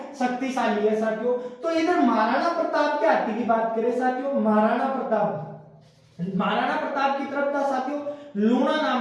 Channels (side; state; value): both; identical; correlation 1.00